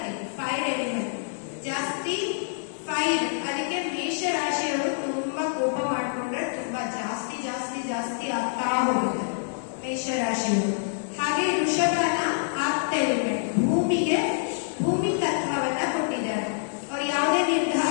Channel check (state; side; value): silent; right; digital silence